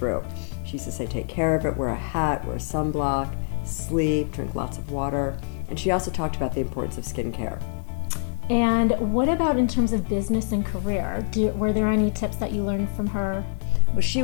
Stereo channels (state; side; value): silent; right; 62 dB below the other